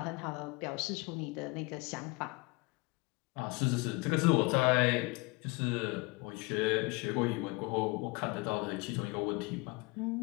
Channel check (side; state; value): right; quieter; 26.1 dB